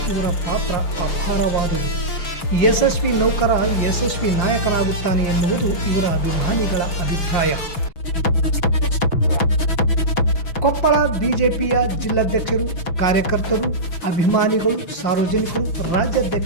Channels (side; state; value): right; late; 6.1 ms